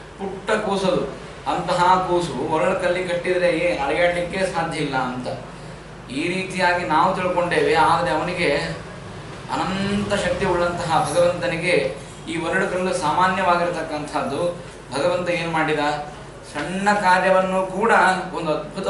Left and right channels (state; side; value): identical; both; correlation 1.00